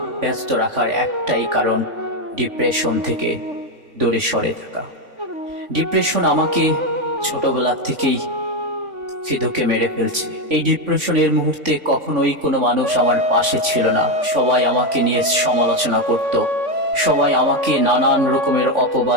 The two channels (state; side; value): late; left; 3.5 ms